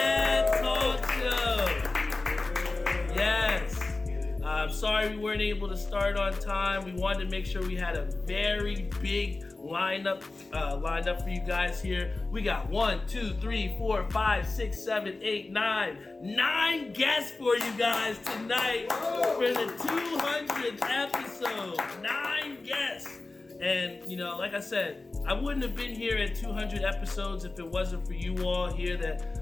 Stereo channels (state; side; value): quieter; right; 3.3 dB